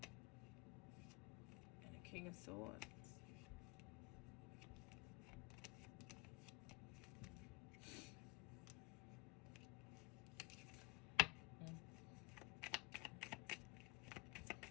And a King of Swords.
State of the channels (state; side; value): quieter; right; 22.2 dB